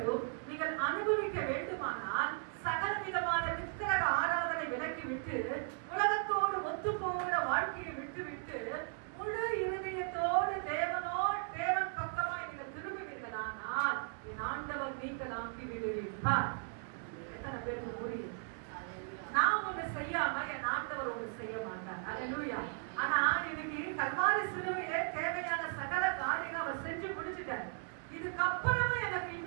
நீங்கள் அனுபவிக்க வேண்டுமானால் சகல விதமான விக்கிரக ஆராதனை விலக்கி விட்டு உலகத்தோடு ஒத்து போகிற வாழ்க்கையை விட்டு விட்டு முழு இருதயத்தோடு தேவன் பக்கமாய் நீங்கள் திரும்புவீர்களானால் என் ஆண்டவர் நீங்களாக்கி விடுவீர்கள். எத்தனை பேருக்கு புரியும்? நான் ஒண்ணு செய்யாம என் ஆண்டவர் ஒண்ணு செய்ய மாட்டார். அல்லேலூயா. ஆனா இன்னைக்கு கல்வாரி சிலுவையிலே தேவையான சகல காரியங்கள் அவர் செஞ்சு முடிச்சுட்டார். இதுக்கப்புறமா எனக்கு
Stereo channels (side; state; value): left; silent; 53 dB below the other